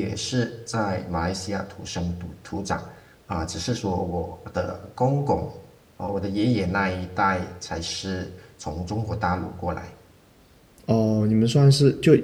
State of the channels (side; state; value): both; identical; correlation 1.00